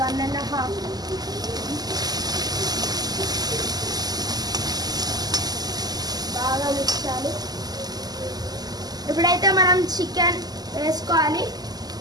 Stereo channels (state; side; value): late; left; 0.19 ms